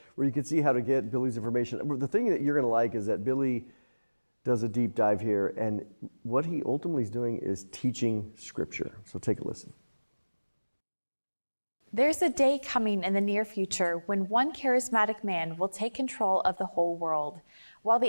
where you can see how to get Billy's information. The thing that you're going to like is that Billy does a deep dive here, and what he ultimately is doing is teaching Scripture. So take a listen. There's a day coming in the near future when one charismatic man will take control of the whole world. While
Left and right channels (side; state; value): both; inverted; correlation -1.00